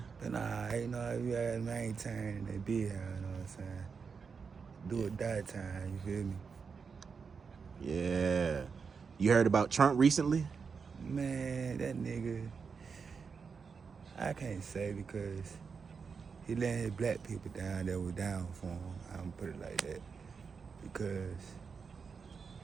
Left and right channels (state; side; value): quieter; left; 5.6 dB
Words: But nah, you know, you gotta maintain that big hound, you know what I'm saying? Do or die time, you feel me? Yeah. You heard about Trump recently? Man, that nigga, I can't say because he let his black people down that were down for him. I'm gonna put it like that. Because